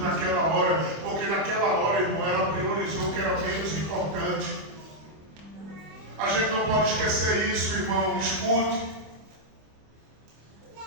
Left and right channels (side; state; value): left; late; 25 ms